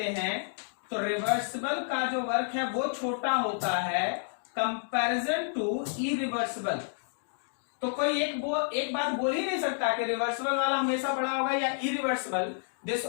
हैं तो रिवर्सिबल का जो वर्क है वो छोटा होता है कंपैरिजन टू इरिवर्सिबल। तो कोई एक बात बोल ही नहीं सकता कि रिवर्सिबल वाला हमेशा बड़ा होगा या इरिवर्सिबल। दिस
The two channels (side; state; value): right; silent; digital silence